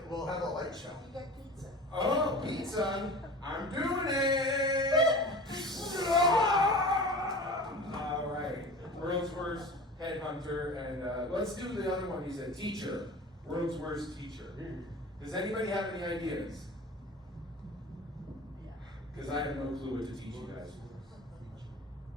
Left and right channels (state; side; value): normal; both; correlation 0.36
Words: we'll have a light show. You get pizza. Oh, pizza. I'm doing it. All right. World's worst headhunter. And let's do the other one. He's a teacher. World's worst teacher. Does anybody have any ideas? Because I have no clue what to teach you guys.